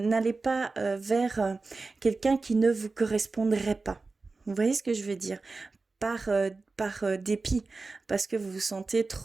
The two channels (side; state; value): left; quieter; 3.8 dB